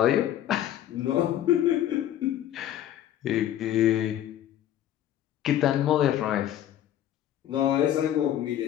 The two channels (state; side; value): quieter; right; 11.6 dB